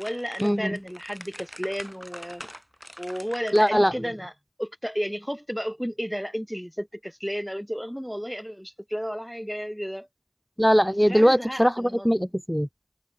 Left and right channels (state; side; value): identical; both; correlation 1.00